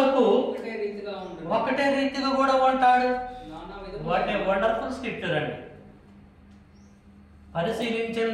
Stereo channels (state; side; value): identical; both; correlation 1.00